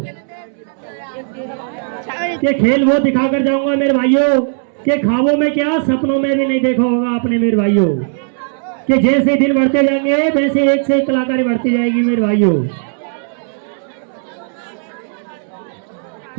ये खेल वो दिखाकर जाऊंगा मेरे भाइयों कि ख्वाबों में क्या सपनों में भी नहीं देखा होगा आपने मेरे भाइयों, कि जैसे दिन बढ़ते जाएंगे वैसे एक से एक कलाकारी बढ़ती जाएगी मेरे भाइयों।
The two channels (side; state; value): left; silent; 68 dB below the other